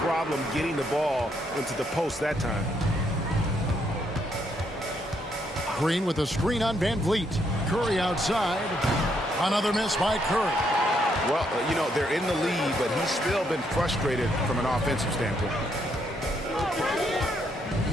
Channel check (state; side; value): normal; both; correlation 0.74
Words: getting the ball into the post that time. Green with a screen on Van Vliet. Curry outside. Another miss by Curry. Well, you know, they're in the lead, but he's still been frustrated from an offensive standpoint.